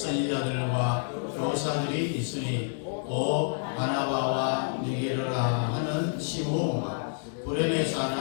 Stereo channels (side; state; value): right; silent; digital silence